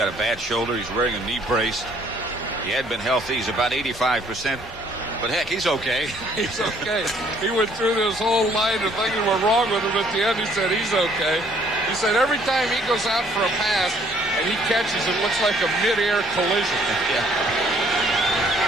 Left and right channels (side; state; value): both; normal; correlation 0.62